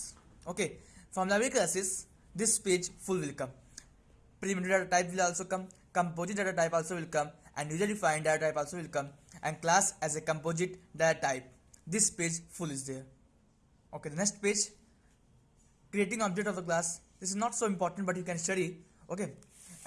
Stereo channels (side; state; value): both; identical; correlation 1.00